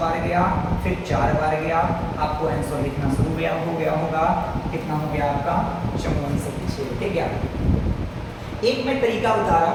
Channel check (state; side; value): identical; both; correlation 1.00